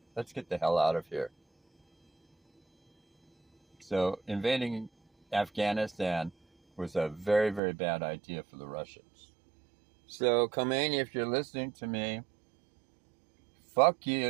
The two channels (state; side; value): drops out; left; at 7.6 s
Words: let's get the hell out of here. So invading Afghanistan was a very, very bad idea for the Russians. So, Khomeini, if you're listening to me, fuck